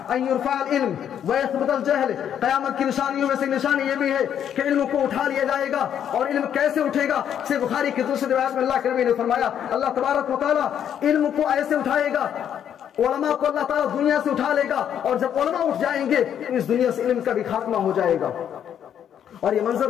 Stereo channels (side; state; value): right; quieter; 9.3 dB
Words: ان يرفع العلم ويثبت الجهل۔ قیامت کی نشانیوں میں سے نشانی یہ بھی ہے کہ علم کو اٹھا لیا جائے گا۔ اور علم کیسے اٹھے گا؟ صحیح بخاری کی دوسری روایت میں اللہ کے نبی نے فرمایا اللہ تبارک و تعالیٰ علم کو ایسے اٹھائے گا، علماء کو اللہ تعالیٰ دنیا سے اٹھا لے گا، اور جب علماء اٹھ جائیں گے تو اس دنیا سے علم کا بھی خاتمہ ہو جائے گا۔ اور یہ منظر